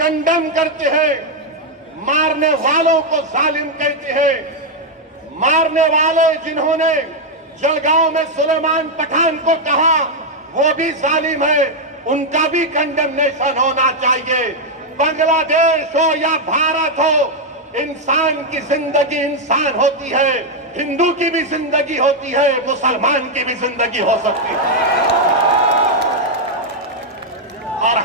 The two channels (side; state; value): both; normal; correlation 0.00